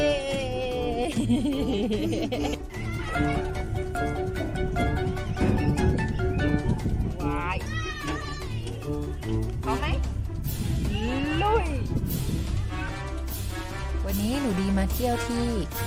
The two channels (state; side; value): identical; both; correlation 1.00